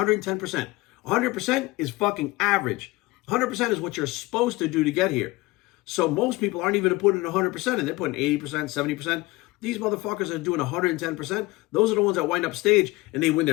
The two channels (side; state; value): right; quieter; 21.7 dB